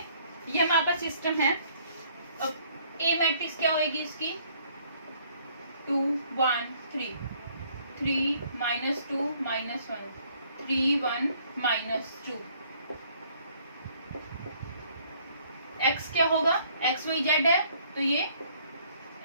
ये हमारे पास सिस्टम है। अब ए मैट्रिक्स क्या होगी इसकी, 2 1 3, 3 -2 -1, 3 1 -2। x क्या होगा, x y z है, तो ये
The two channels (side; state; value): both; inverted; correlation -0.62